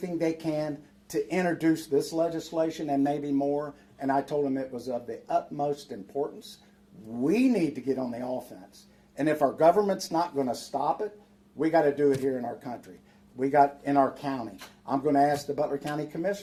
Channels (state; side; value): identical; both; correlation 1.00